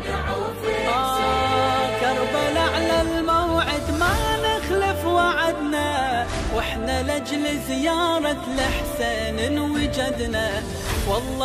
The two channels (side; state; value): both; identical; correlation 1.00